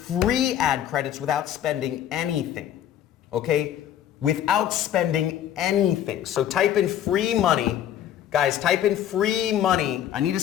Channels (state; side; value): quieter; right; 10.7 dB